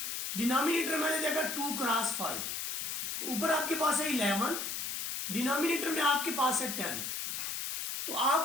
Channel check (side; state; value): left; noise; hiss, 3 dB below the sound